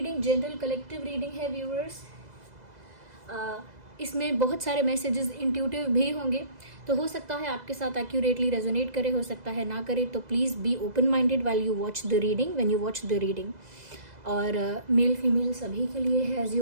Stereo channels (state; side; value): late; left; 2.0 ms